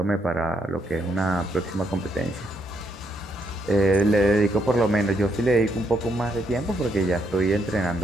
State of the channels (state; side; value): normal; both; correlation 0.76